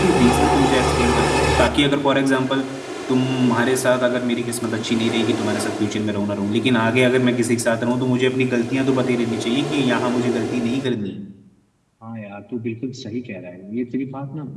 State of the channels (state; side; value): identical; both; correlation 1.00